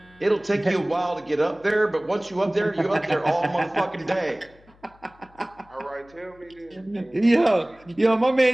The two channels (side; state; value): left; noise; hum, 29 dB below the sound